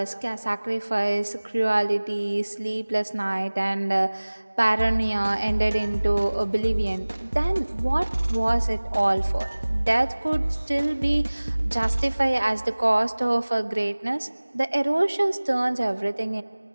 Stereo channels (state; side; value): inverted; both; correlation -1.00